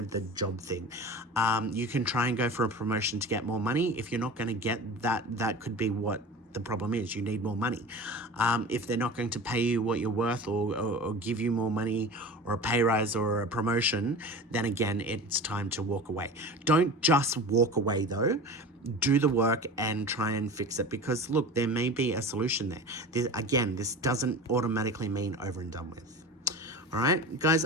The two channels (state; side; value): normal; both; correlation 0.34